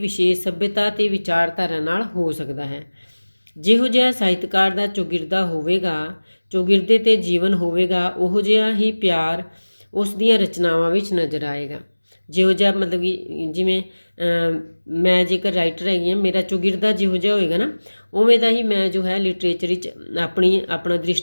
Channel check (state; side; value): inverted; both; correlation -1.00